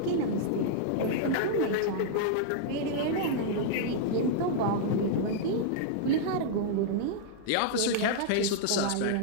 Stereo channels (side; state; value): both; different; correlation -0.01